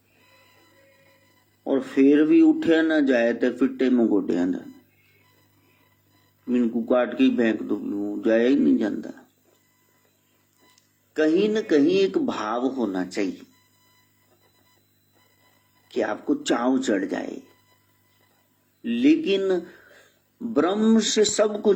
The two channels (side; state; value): both; identical; correlation 1.00